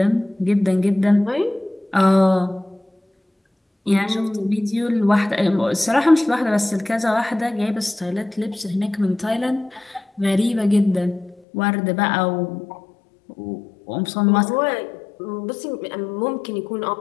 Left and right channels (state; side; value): drops out; right; at 11.4 s